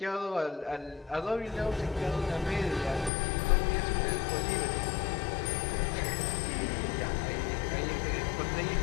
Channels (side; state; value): right; drops out; at 3.1 s